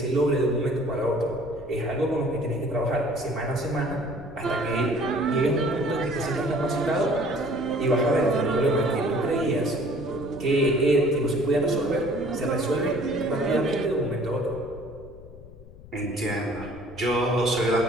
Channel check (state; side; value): noise; left; rumble, 18 dB below the sound